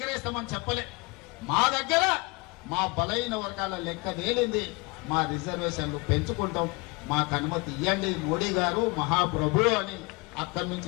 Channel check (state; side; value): quieter; right; 28.1 dB